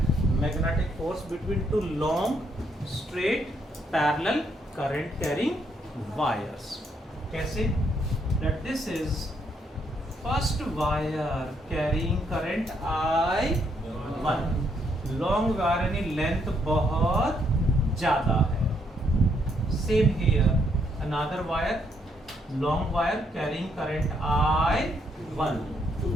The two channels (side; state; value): both; normal; correlation 0.73